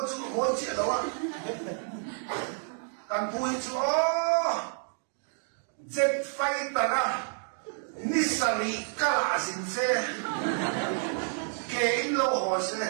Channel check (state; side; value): silent; left; 58 dB below the other